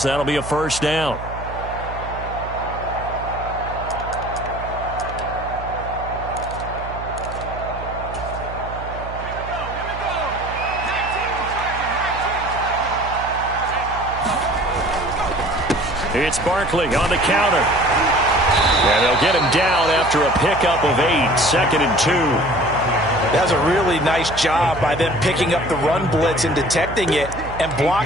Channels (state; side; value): noise; right; hum, 11 dB below the sound